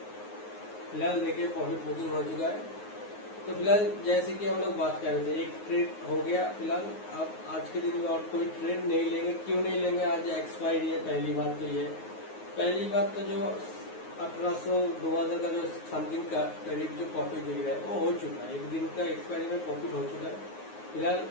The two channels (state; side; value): late; right; 9.5 ms